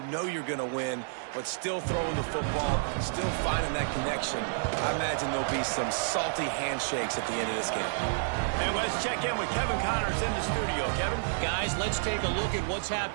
know you're going to win, but still throwing the football, still finding that connection. I imagine there'll be some salty handshakes at the end of this game. And let's check in with Kevin Connors in the studio. Kevin? Guys, let's take a look at what's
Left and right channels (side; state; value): left; silent; 58 dB below the other